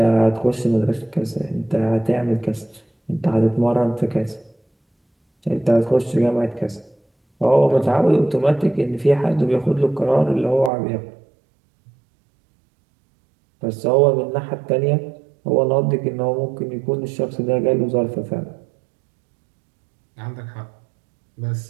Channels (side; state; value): left; drops out; at 10.7 s